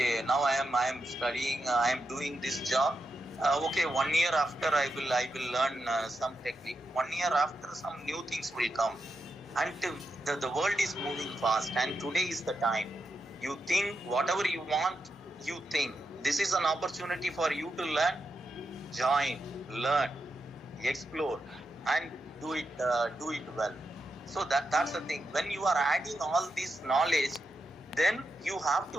now I am studying, I am doing this job. Okay, 1 year after I will learn some technique. 1 year after, some new things will come. And the world is moving fast, and today is the time. You think whatever you want, you think. This is an opportunity for you to learn, join, learn, explore, and do it well. So that's the thing. When you are adding all this knowledge, then you have to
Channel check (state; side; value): normal; both; correlation 0.86